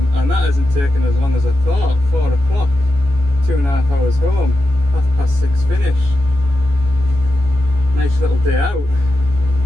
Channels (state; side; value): late; left; 14 ms